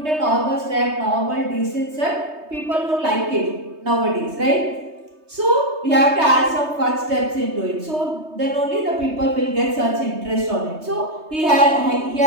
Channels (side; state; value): left; late; 3.2 ms